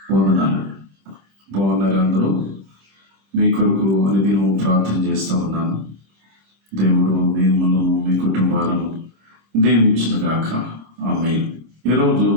వందనాలు. బాగున్నారు అందరూ? మీ కొరకు అనుదినం ప్రార్థన చేస్తూ ఉన్నాను. దేవుడు మిమ్మల్ని మీ కుటుంబాలను దీవించునుగాక. ఆమేన్. ఈరోజు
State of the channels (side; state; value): left; late; 26 ms